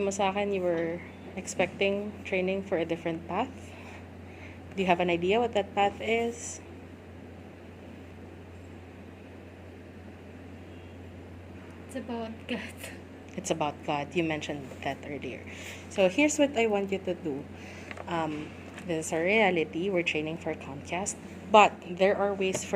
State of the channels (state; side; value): identical; both; correlation 1.00